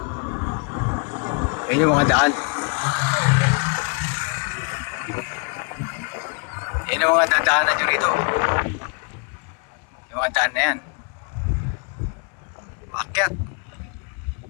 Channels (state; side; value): quieter; right; 37.2 dB